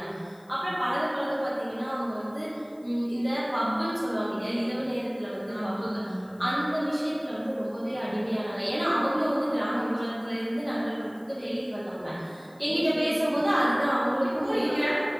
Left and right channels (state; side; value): noise; left; hiss, 30 dB below the sound